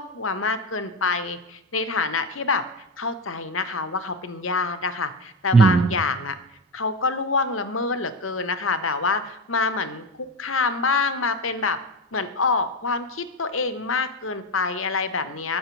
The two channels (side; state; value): both; normal; correlation 0.18